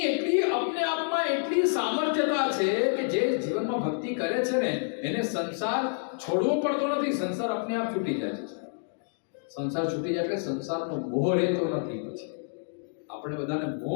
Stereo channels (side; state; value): right; silent; digital silence